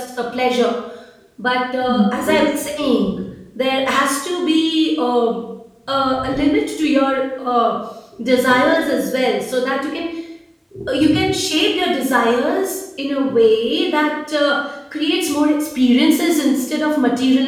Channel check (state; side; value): identical; both; correlation 1.00